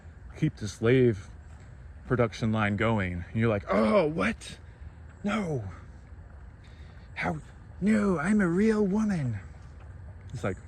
keep the slave production line going. And you're like, oh, what? No. How? No, I'm a real woman. It's like,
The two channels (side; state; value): both; identical; correlation 1.00